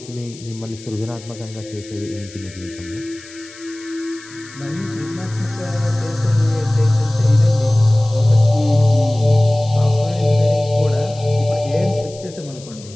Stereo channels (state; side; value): noise; left; hiss, 19 dB below the sound